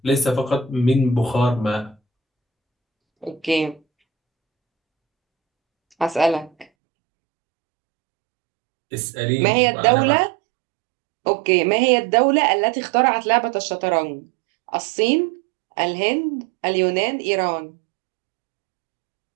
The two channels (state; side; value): drops out; left; at 6.7 s